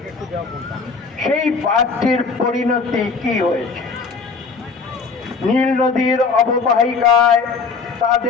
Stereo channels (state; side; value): quieter; right; 4.8 dB